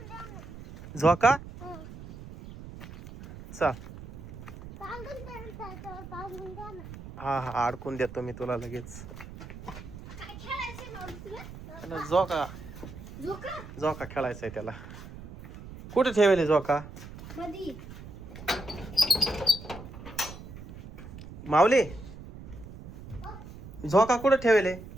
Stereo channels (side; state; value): right; noise; rumble, 14 dB below the sound